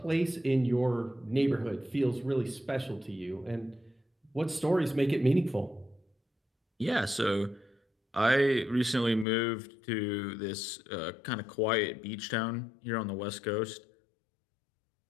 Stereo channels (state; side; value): drops out; right; at 9.2 s